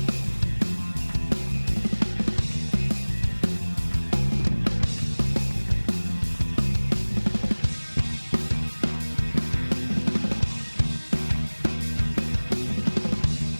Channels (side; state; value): both; inverted; correlation -1.00